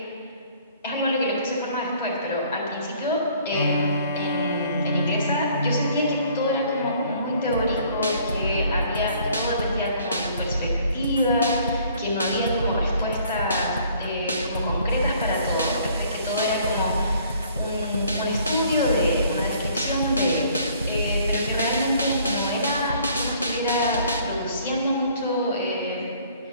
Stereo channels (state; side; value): inverted; both; correlation -0.58